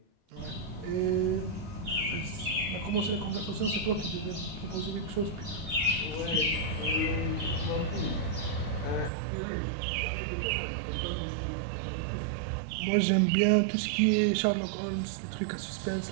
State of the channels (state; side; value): drops out; left; at 9.1 s